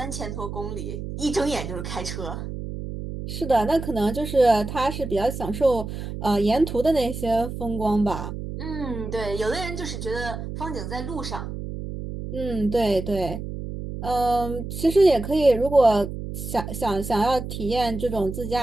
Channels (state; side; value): noise; right; hum, 7 dB below the sound